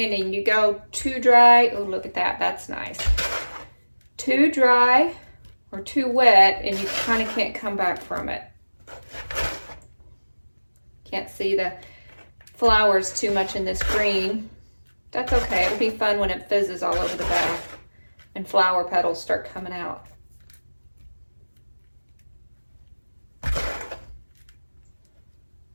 you go too dry. Oh, look at that, that's nice. Too dry or too wet and you kind of can't come back from it. Can't see the flowers too much in this green. That's okay, it'll be fun when it fizzes all over the bath and flower petals start coming out.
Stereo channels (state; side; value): inverted; both; correlation -1.00